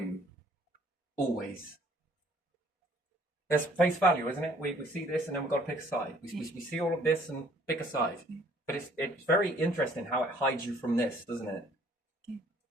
Always. There's face value, isn't it? We see this and then we've got to pick a side. We see all of this and pick a side. But it's very interesting how it hides you from this, doesn't it? Yeah.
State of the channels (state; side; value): normal; both; correlation 0.58